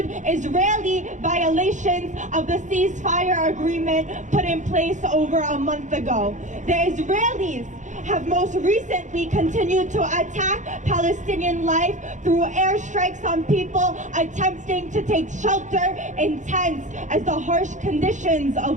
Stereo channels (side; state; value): left; late; 0.35 ms